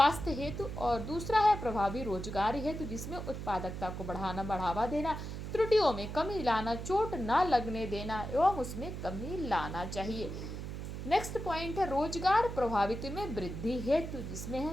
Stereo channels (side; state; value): right; noise; hum, 7 dB below the sound